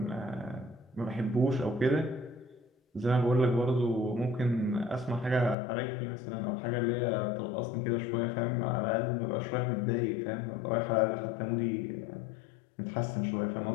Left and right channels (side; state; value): right; drops out; at 5.6 s